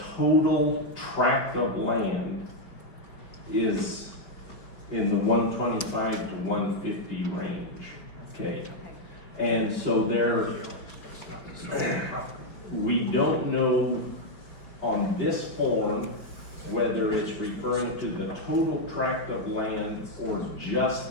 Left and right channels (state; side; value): late; right; 5.3 ms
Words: total tract of land is in the 125 to 150 range, okay? And so we don't know on this form whether it's referring to the total tract of land or